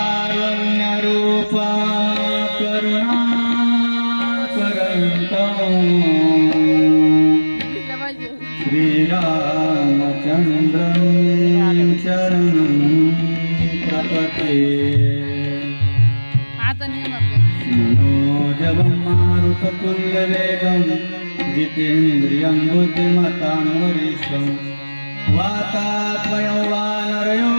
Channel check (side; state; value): both; inverted; correlation -1.00